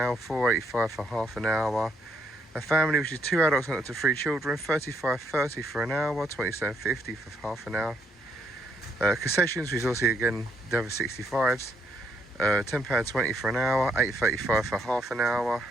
£4.85 for half an hour. A family, which is 2 adults and up to 3 children, £35.30 for an hour, £27.50 for half an hour. Concessions, which is also again the over 65s, £10.20 for an hour, £8.35 for half an hour.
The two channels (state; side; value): normal; both; correlation 0.73